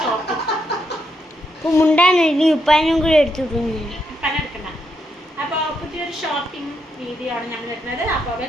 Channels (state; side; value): normal; both; correlation 0.80